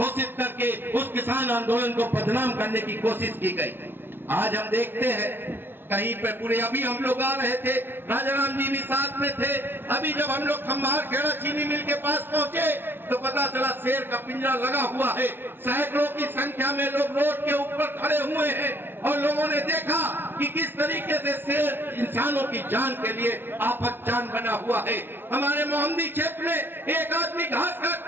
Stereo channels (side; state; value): left; late; 0.10 ms